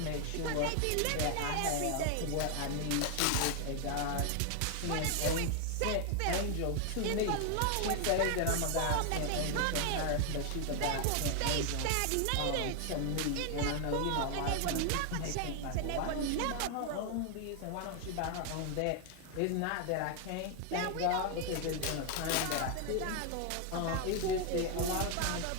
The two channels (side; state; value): both; different; correlation 0.00